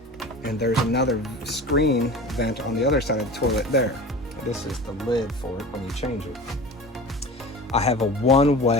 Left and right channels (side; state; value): both; normal; correlation 0.35